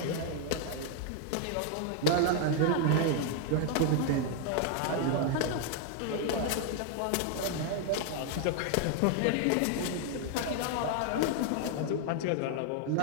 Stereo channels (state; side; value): different; both; correlation 0.00